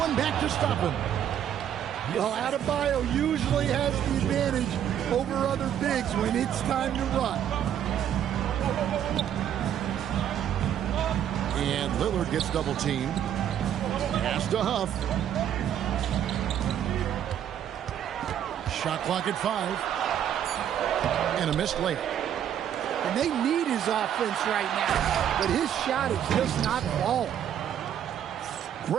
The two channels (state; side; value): quieter; left; 9.9 dB